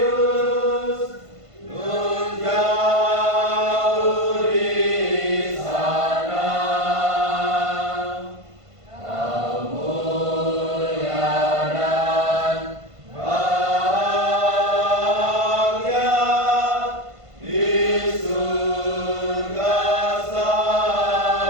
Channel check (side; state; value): left; late; 1.5 ms